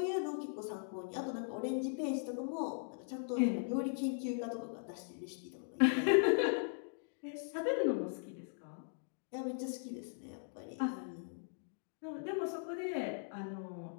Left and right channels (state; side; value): silent; right; digital silence